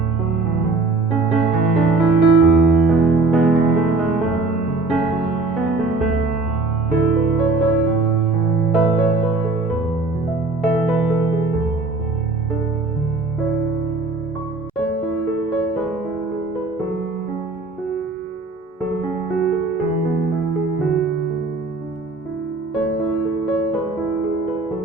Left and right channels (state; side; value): quieter; left; 3.4 dB